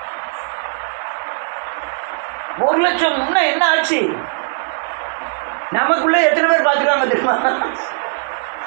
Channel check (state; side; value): silent; left; digital silence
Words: 1,00,000 முன்ன என்ன ஆச்சு? நமக்குள்ள எத்தனை பேர் பார்த்துருக்காங்க தெரியுமா?